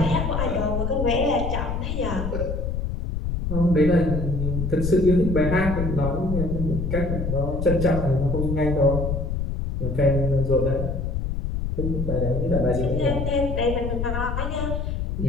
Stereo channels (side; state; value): left; noise; rumble, 2 dB below the sound